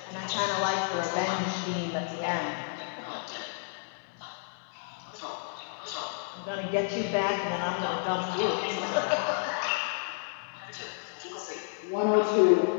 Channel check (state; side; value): silent; right; 57 dB below the other